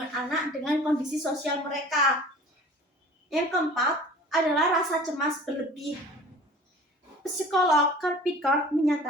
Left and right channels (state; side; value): normal; both; correlation 0.44